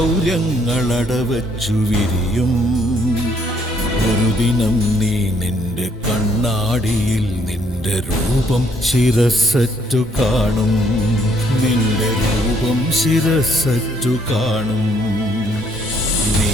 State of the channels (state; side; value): normal; both; correlation 0.67